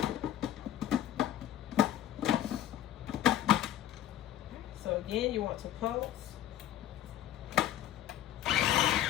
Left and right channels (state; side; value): quieter; right; 12.0 dB